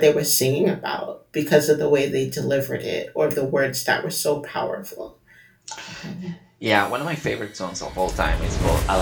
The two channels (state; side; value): identical; both; correlation 1.00